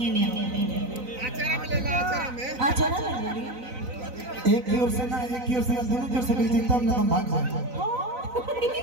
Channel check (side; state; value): left; late; 4.0 ms